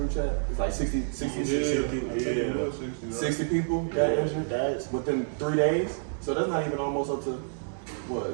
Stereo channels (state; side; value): silent; left; digital silence